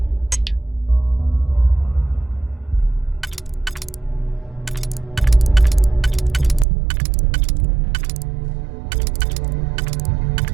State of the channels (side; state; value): left; drops out; at 6.7 s